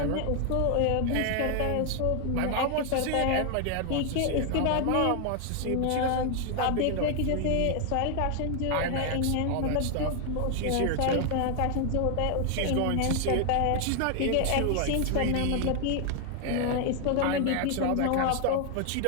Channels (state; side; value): different; both; correlation 0.00